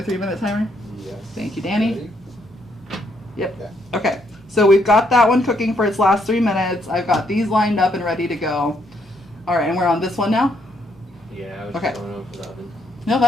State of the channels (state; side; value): normal; both; correlation 0.73